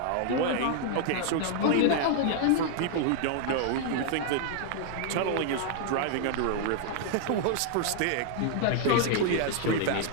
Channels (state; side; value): different; both; correlation 0.00